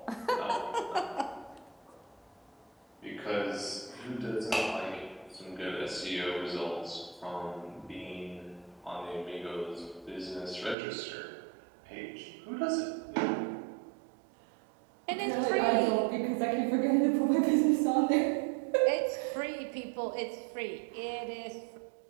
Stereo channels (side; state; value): left; drops out; at 10.8 s